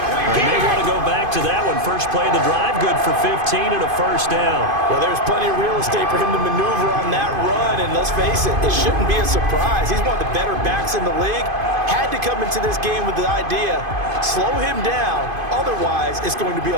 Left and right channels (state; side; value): late; left; 2.5 ms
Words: They may want to go back to that one. First play of the drive, good for 15 and a 1st down. Well, there's plenty of real estate for him to maneuver on that run. And let's face it, it shouldn't be a surprise. He's one of the better backs in the league. Had to come into this game with the idea, slow him down. Otherwise, it's going to be